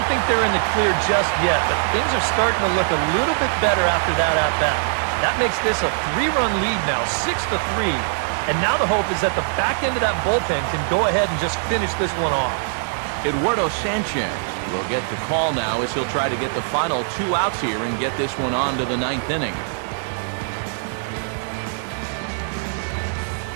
think they're in the clear just yet, but things are starting to look a little bit better after that at-bat. That makes this a 3-run lead now, 6-3. And now the hope is that the back end of that bullpen can go ahead and just finish this one off. Eduardo Sanchez will get the call now as he'll try to get the final 2 outs here and get this one on to the 9th inning.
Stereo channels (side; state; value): left; silent; digital silence